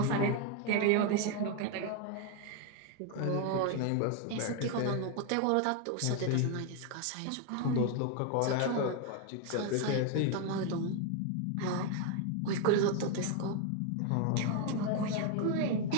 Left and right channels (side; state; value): both; different; correlation 0.01